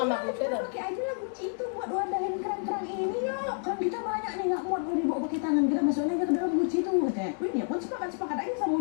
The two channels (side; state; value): right; silent; 58 dB below the other